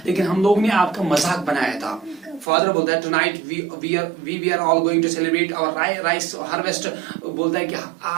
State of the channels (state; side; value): drops out; left; at 2.5 s